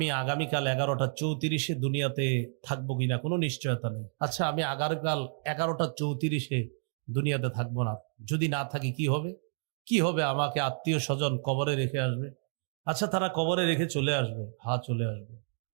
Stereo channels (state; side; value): silent; left; digital silence